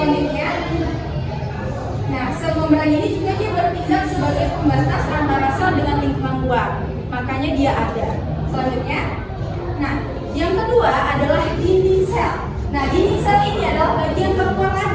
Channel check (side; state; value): both; identical; correlation 1.00